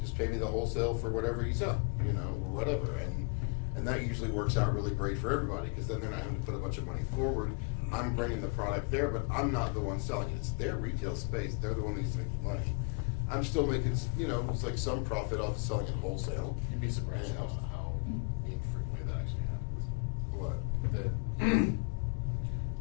pay me the wholesale for whatever you sell, you know, or whatever. And that usually works out really great for everybody, because then they're not having to put a bunch of money forward. I'm bringing the product there, but I'm not the one selling it. It's their retail space. They're the one that needs to make the money. I'm still making, you know, it's like some profit off of selling it wholesale. You'd be surprised Yeah. how infrequently that actually happens. What? That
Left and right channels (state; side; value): quieter; right; 34.5 dB